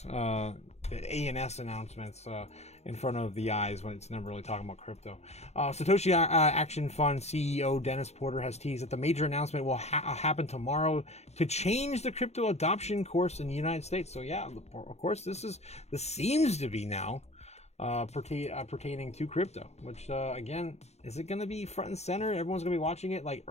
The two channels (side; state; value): right; late; 0.31 ms